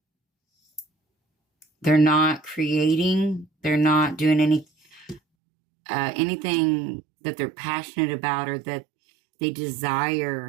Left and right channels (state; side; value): drops out; left; at 5.2 s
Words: They're not creating. They're not doing anything that they're passionate about or that they